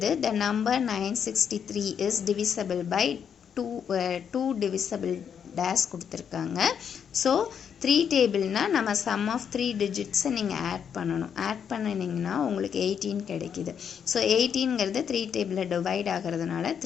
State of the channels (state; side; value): quieter; right; 7.7 dB